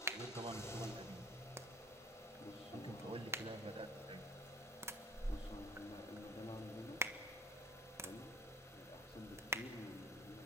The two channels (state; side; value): normal; both; correlation 0.46